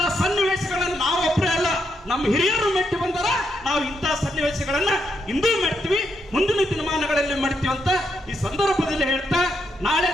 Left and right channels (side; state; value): both; normal; correlation 0.80